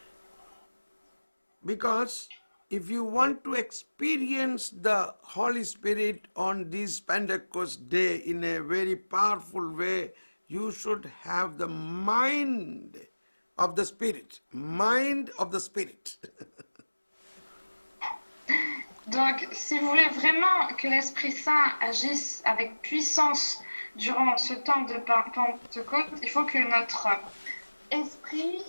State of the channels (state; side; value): inverted; both; correlation -1.00